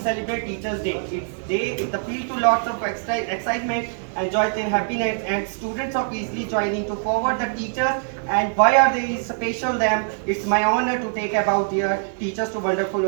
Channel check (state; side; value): silent; left; 63 dB below the other